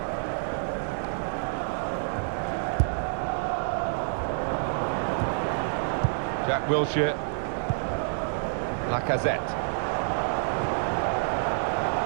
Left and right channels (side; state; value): left; silent; digital silence